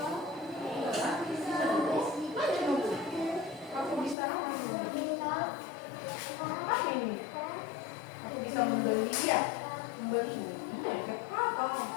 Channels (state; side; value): drops out; right; at 4.2 s